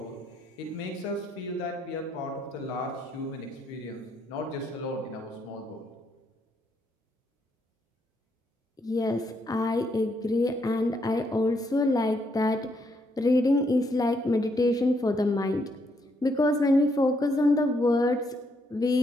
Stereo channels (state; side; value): normal; both; correlation 0.75